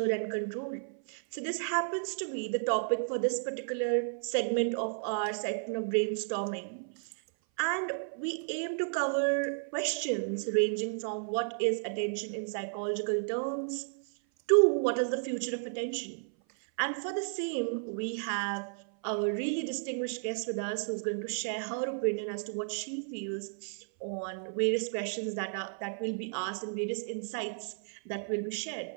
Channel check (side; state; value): left; silent; 56 dB below the other